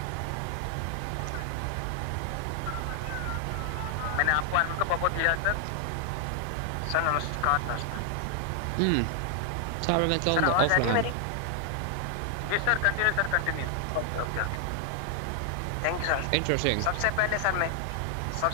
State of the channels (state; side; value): different; both; correlation 0.00